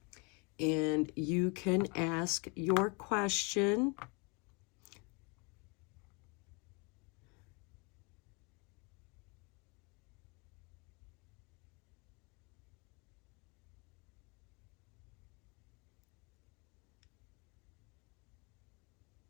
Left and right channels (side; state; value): right; quieter; 31.1 dB